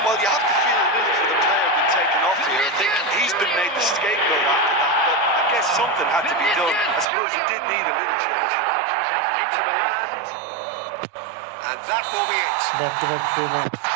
Well, you have to feel a little for the player being taken off here. I think he's been made the scapegoat after that, but I guess something had to be done. I suppose he did need a little change. Into the land. And that will be it. Back to back free match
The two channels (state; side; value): drops out; left; at 7.1 s